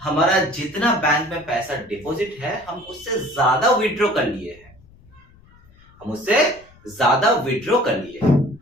हमारा जितना बैंक में पैसा डिपॉजिट है हम उससे ज्यादा विड्रॉ कर लिए हैं, हम उससे ज्यादा विड्रॉ कर लिए,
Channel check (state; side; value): noise; left; rumble, 27 dB below the sound